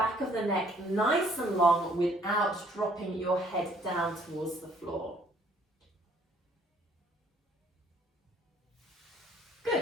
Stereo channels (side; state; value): both; normal; correlation 0.61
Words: of the neck nice and long without dropping your head down towards the floor.